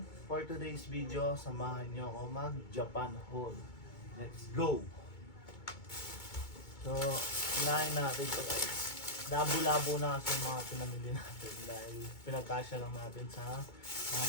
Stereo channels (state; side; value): late; right; 2.2 ms